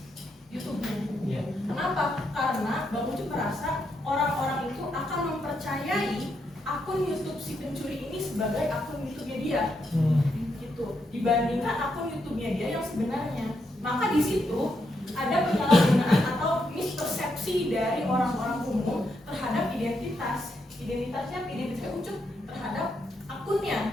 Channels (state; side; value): normal; both; correlation 0.80